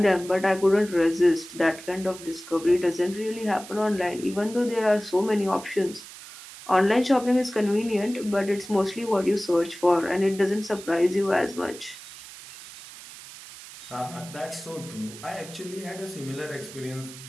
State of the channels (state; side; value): noise; right; hiss, 16 dB below the sound